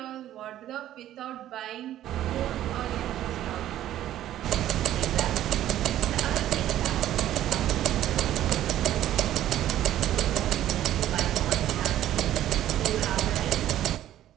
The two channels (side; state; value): left; quieter; 12.7 dB